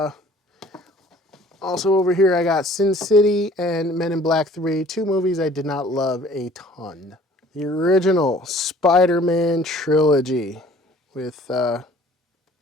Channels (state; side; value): normal; both; correlation 0.52